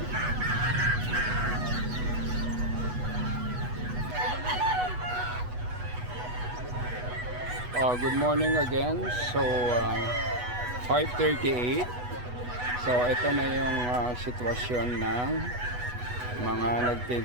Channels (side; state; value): left; late; 8.1 ms